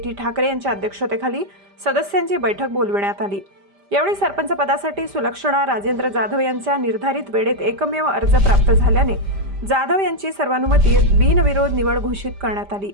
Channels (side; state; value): left; late; 5.0 ms